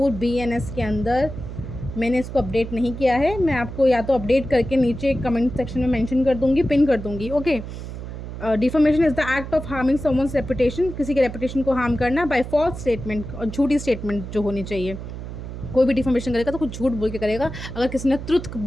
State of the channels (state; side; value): noise; right; hum, 9 dB below the sound